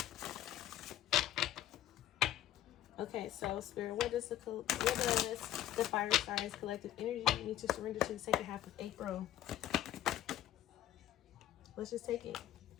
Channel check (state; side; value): quieter; right; 12.6 dB